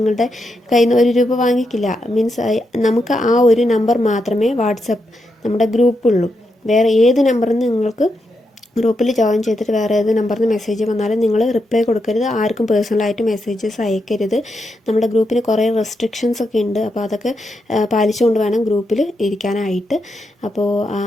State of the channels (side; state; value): both; normal; correlation 0.84